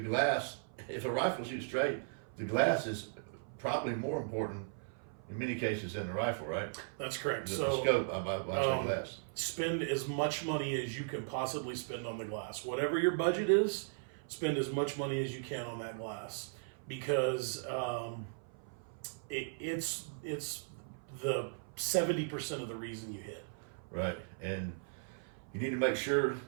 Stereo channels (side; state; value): left; silent; 53 dB below the other